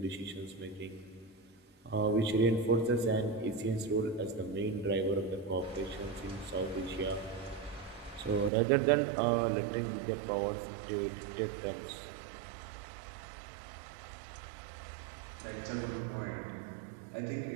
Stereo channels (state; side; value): drops out; left; at 8.5 s